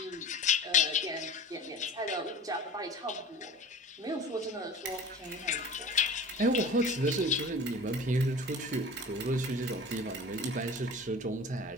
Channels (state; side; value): normal; both; correlation 0.37